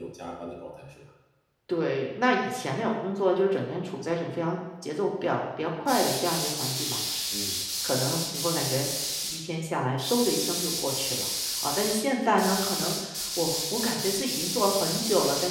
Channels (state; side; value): identical; both; correlation 1.00